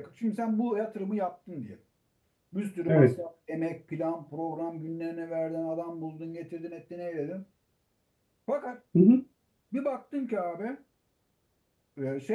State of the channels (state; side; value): identical; both; correlation 1.00